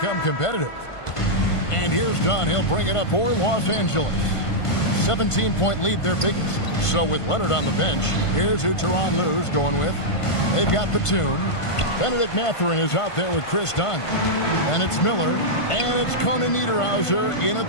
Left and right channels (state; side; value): late; right; 1.5 ms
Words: competitive. And here's Dunn. He'll bring it up for Los Angeles. 17-point lead, their biggest. So with Leonard on the bench, here's who Tyronn Lue's going with. They've got Batum. Benedict Mathurin is out there with Chris Dunn. Then it's Miller. And it's Conan Niederhauser in